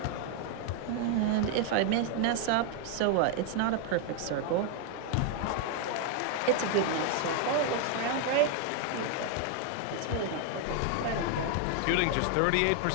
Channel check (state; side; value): different; both; correlation 0.01